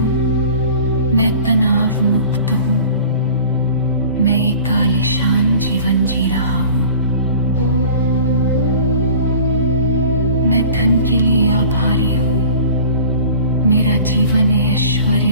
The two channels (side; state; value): both; inverted; correlation -0.43